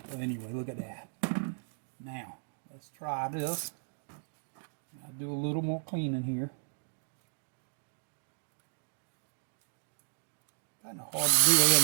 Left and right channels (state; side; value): silent; left; digital silence